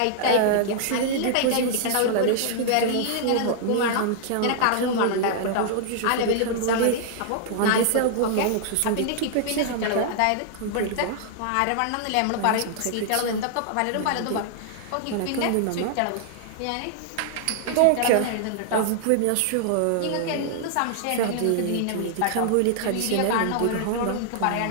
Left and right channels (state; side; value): different; both; correlation -0.01